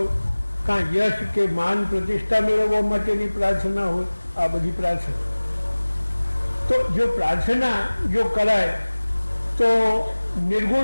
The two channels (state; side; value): inverted; both; correlation -1.00